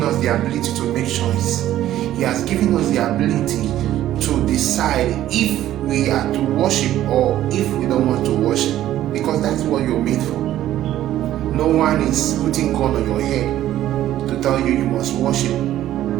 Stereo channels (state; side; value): quieter; left; 13.0 dB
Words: us the ability to make choice. He has given us the ability to decide if we are to worship or if we don't want to worship. Because that's what you're made for. No one is putting gun on your head to tell you must worship.